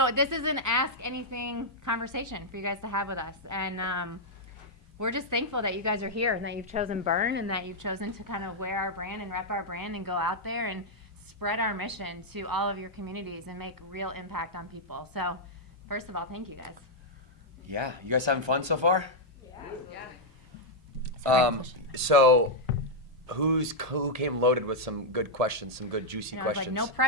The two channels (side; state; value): both; normal; correlation -0.04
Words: this is an Ask Anything conversation for you guys to have with us. And we're just thankful that you guys are here and that you've chosen Burn and that you've chosen to kind of wear our brand and rep our brand and go out there and spread our mission to all of your communities and make real impact on people. So first of all, thank you guys. Yeah, you guys having fun so far? Yeah. So who came loaded with some good questions, some good juicy questions? Like no